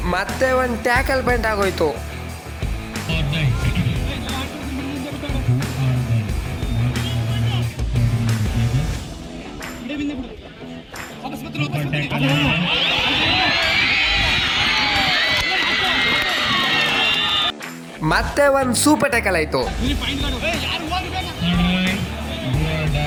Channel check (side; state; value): both; identical; correlation 1.00